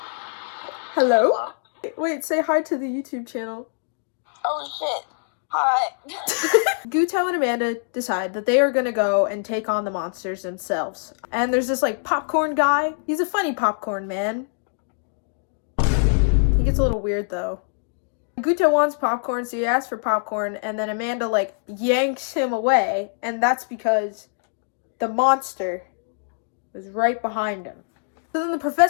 Hello? Wait, say hi to the YouTube channel. Oh shit. Hi. Guto and Amanda decide that they are gonna go and take on the monsters themselves. And there's this, like, popcorn guy. He's a funny popcorn man. He gets a little weird, though. Guto wants popcorn, so he asks for popcorn, and then Amanda, like, yanks him away, and that's because the monster was right behind him. So then the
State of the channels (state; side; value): silent; right; digital silence